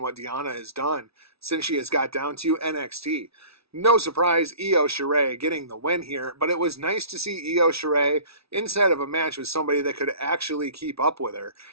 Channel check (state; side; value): late; left; 0.77 ms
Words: what Deonna has done since she has got down to NXT. No surprise, Io Shirai getting the win here, but it was nice to see Io Shirai inside of a match with somebody that could actually keep up with her.